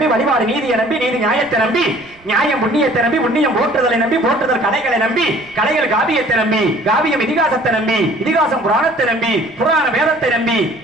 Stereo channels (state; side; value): noise; right; rumble, 27 dB below the sound